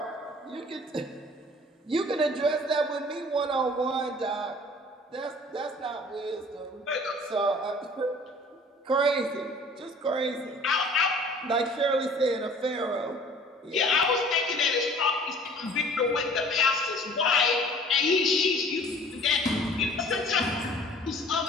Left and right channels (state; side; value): normal; both; correlation 0.50